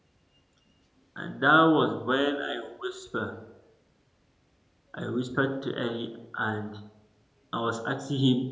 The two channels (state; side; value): identical; both; correlation 1.00